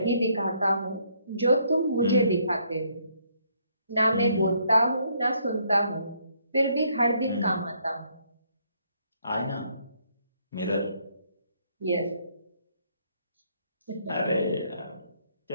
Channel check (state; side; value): inverted; both; correlation -0.69